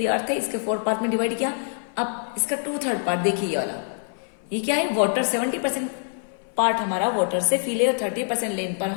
अर्थ है, इसके 4 पार्ट में डिवाइड किया। अब इसका 2/3 पार्ट देखिए, ये वाला, ये क्या है? वाटर। 70% पार्ट हमारा वाटर से फिल है और 30% लैंड पर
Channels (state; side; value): silent; right; 57 dB below the other